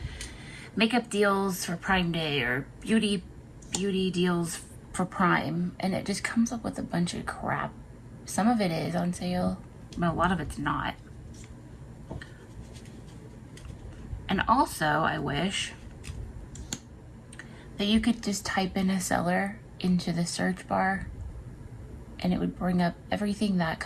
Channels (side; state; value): both; identical; correlation 1.00